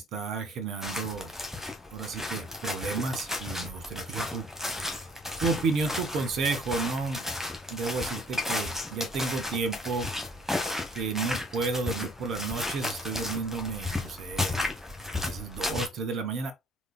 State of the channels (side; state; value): both; normal; correlation 0.57